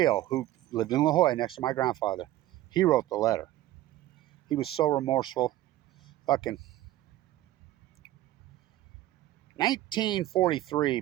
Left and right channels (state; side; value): quieter; left; 15.0 dB